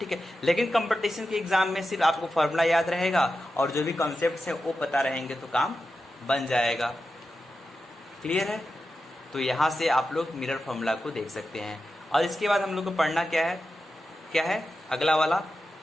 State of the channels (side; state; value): both; normal; correlation 0.91